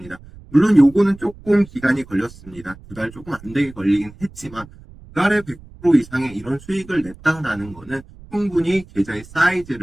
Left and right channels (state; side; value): noise; right; rumble, 20 dB below the sound